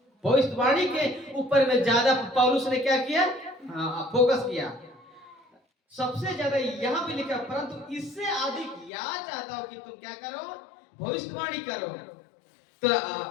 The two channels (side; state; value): right; drops out; at 8.9 s